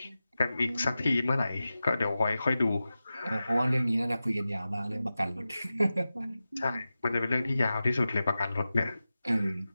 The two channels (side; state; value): both; inverted; correlation -0.94